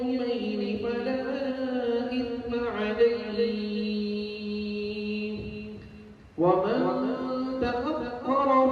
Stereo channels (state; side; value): identical; both; correlation 1.00